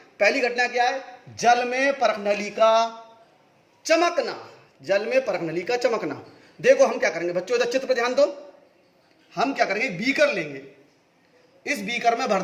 पहली घटना क्या है? जल में परखनली का चमकना। जल में परखनली का चमकना। देखो हम क्या करेंगे बच्चों, इधर चित्र पर ध्यान दो। हम क्या करेंगे, बीकर लेंगे, इस बीकर में भर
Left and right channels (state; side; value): identical; both; correlation 1.00